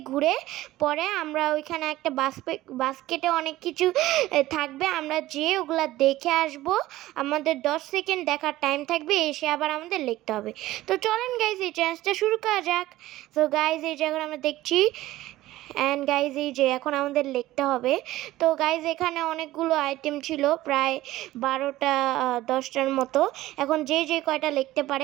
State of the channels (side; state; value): left; quieter; 16.2 dB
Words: ঘুরে পরে আমরা ওইখানে একটা বাস্কেটে অনেক কিছু থাকবে, আমরা যেয়ে ওগুলা দেখে আসবো। আমাদের 10 সেকেন্ড দেখার টাইম থাকবে, এসে আবার আমাদের লিখতে হবে। তো চলেন গাইজ, এই চ্যালেঞ্জটা শুরু করা যাক। তো গাইজ, এই যে এখন আমরা দেখছি অ্যান্ড গাইজ, এই যে এখন আমাদের লিখতে হবে। তো গাইজ, এখানে অনেকগুলো আইটেম ছিল, প্রায় 12টা 10টার মতো। এখন যে কয়টা লিখতে